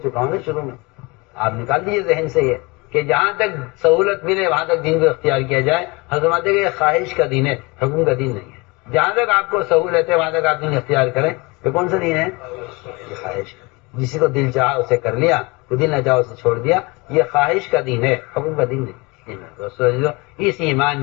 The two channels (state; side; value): quieter; right; 26.0 dB